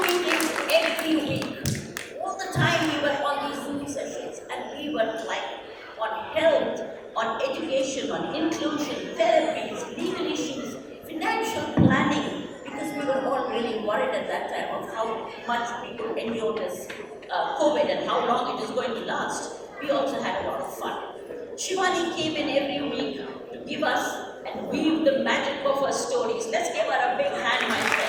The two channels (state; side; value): identical; both; correlation 1.00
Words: meetings every week. All the time we were on these Zoom sessions, and we were like on health, on education, on inclusion, therapies, legal issues, financial planning, because we were all really worried at that time of how much we could endure this COVID and how long it is going to last. We also had a lot of fun. Shivani came in every week to give us and weave the magic of her stories. Let's give her a big hand, my